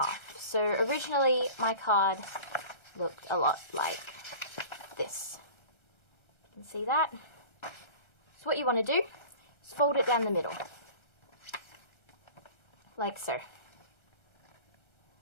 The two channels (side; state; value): right; late; 1.3 ms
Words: So originally my card looked a lot like this. You can see that. So what you want to do is fold it down the middle, like so.